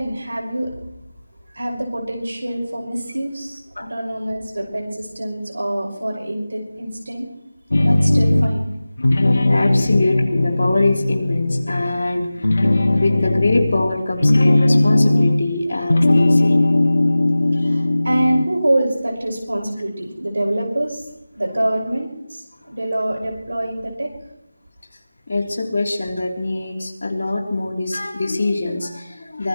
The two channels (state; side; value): inverted; both; correlation -0.97